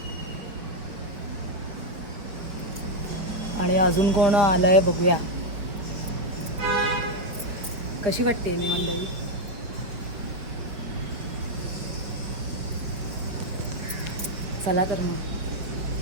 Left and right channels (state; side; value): late; left; 5.2 ms